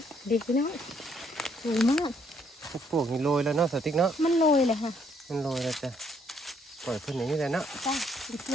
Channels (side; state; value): both; normal; correlation 0.69